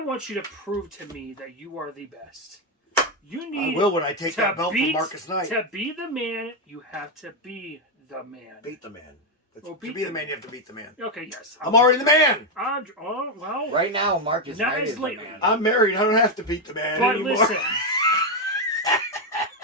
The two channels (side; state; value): both; normal; correlation 0.04